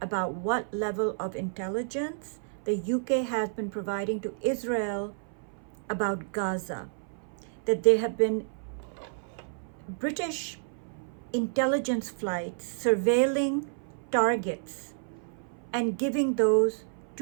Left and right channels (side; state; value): left; silent; 58 dB below the other